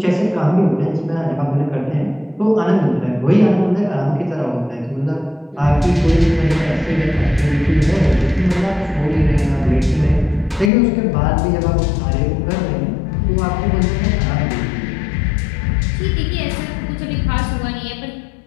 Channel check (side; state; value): right; drops out; at 10.7 s